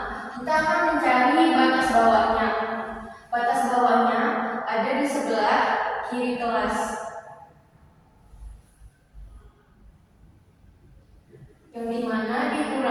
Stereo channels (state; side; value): identical; both; correlation 1.00